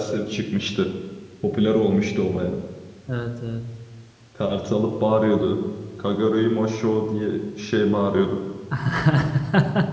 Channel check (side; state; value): both; identical; correlation 1.00